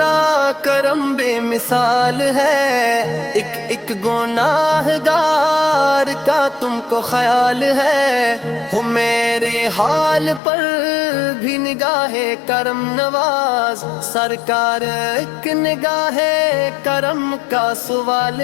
کرم بے مثال ہے، ایک ایک گناہ گار کا تم کو خیال ہے، ہو میرے حال پر بھی نگاہ کرم نواز، سرکار ایک نگاہ کرم کا سوال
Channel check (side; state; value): right; drops out; at 10.4 s